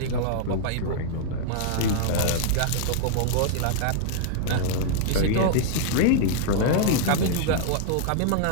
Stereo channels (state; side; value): different; both; correlation -0.01